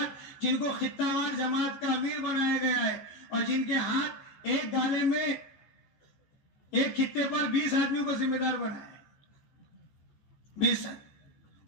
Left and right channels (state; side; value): late; right; 14 ms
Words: جن کو خطہ وار جماعت کا امیر بنایا گیا ہے، اور جن کے ہاتھ ایک گالے میں ایک خطے پر 20 آدمیوں کو ذمہ دار بنایا ہے، 20